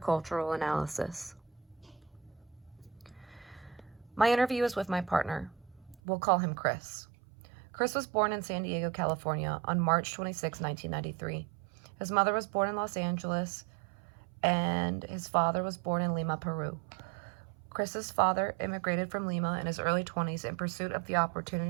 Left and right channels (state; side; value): drops out; left; at 6.0 s